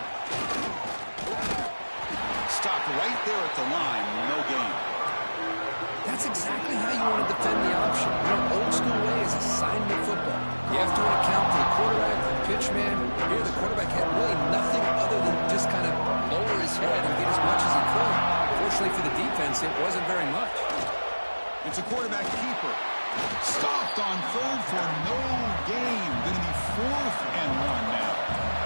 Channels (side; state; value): both; inverted; correlation -1.00